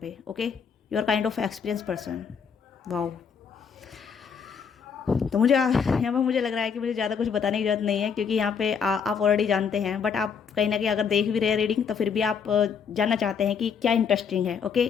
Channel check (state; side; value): quieter; right; 6.5 dB